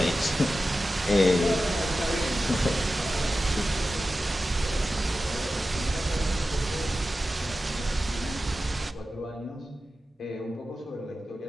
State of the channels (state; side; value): normal; both; correlation 0.93